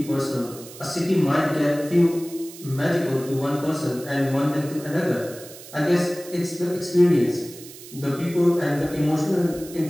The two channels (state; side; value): noise; right; hiss, 17 dB below the sound